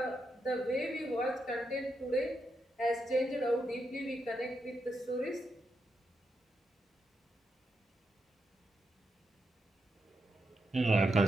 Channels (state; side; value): normal; both; correlation 0.84